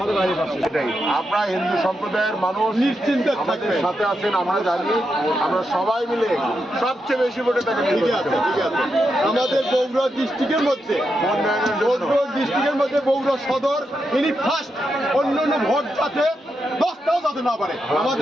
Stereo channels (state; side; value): normal; both; correlation 0.85